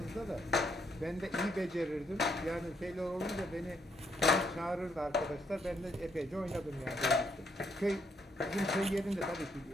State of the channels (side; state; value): both; normal; correlation 0.74